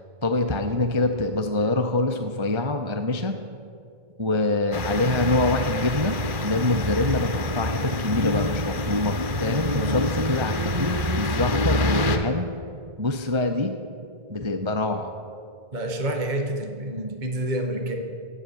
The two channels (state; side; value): late; left; 1.1 ms